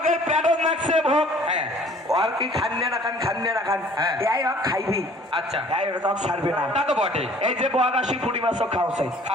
প্যাডন নাকছে ভোগ, হ্যাঁ আর কি খান্নে না খান হ্যাঁ। এই হক খাইবি, আচ্ছা, এই রকম ছাড়বে না। তা তো বটে। এই যে বক আসি পুঁটি মাছও খাওয়াছে,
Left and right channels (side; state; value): both; normal; correlation 0.53